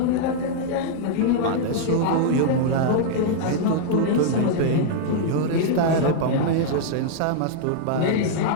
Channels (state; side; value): different; both; correlation -0.01